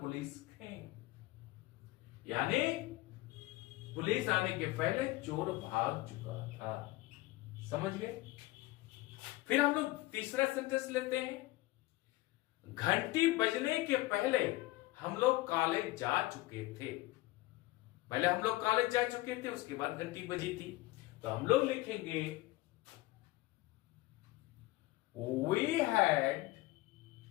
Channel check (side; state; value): right; quieter; 19.2 dB